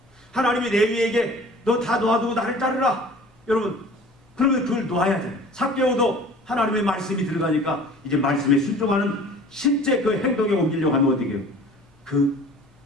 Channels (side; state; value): both; normal; correlation 0.46